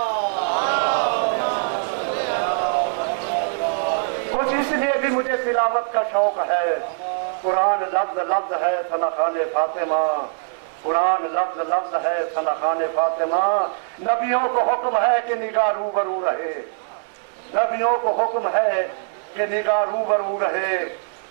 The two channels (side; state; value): left; silent; 64 dB below the other